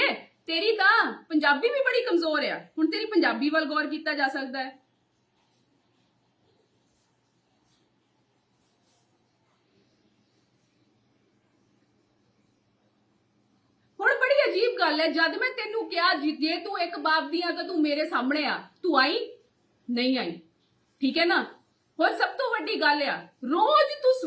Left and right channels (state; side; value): identical; both; correlation 1.00